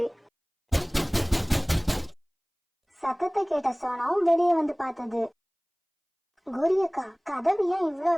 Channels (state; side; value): identical; both; correlation 1.00